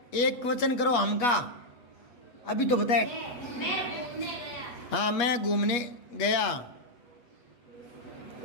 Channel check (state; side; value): late; right; 8.3 ms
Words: एक वचन करो हम का। अभी तो बताए। हाँ मैं घूमने गया।